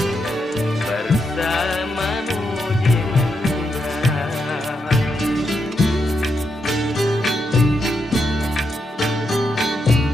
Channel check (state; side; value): normal; both; correlation 0.82